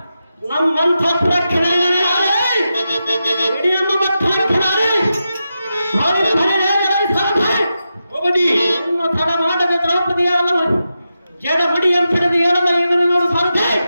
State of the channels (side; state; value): both; inverted; correlation -0.89